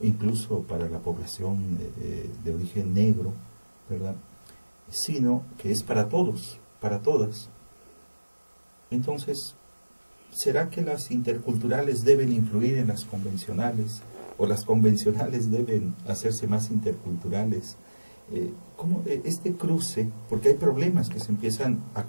para la población de origen negro, ¿verdad? Sino que es para todos, para todas. Entonces, ¿será que las interculturales deben influir en las convencionales? ¿O las convencionales deben hacerse más interculturales? ¿Cómo este cruce? Porque hay problemas que se empiezan a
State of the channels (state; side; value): inverted; both; correlation -1.00